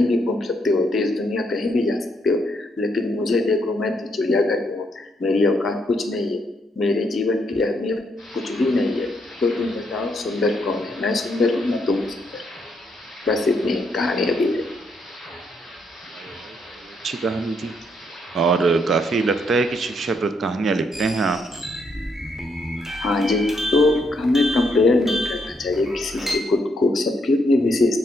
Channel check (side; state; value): both; normal; correlation 0.75